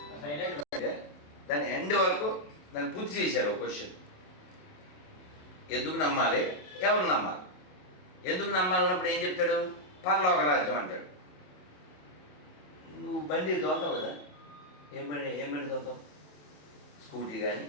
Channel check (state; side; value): late; right; 27 ms